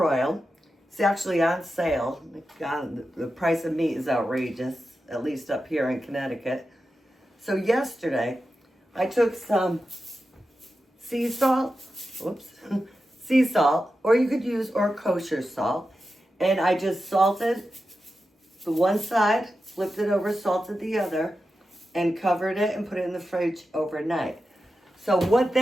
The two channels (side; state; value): both; normal; correlation 0.91